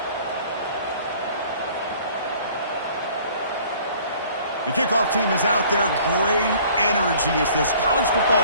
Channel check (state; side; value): inverted; both; correlation -0.53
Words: The kickoff team is out there. Great energy as this college football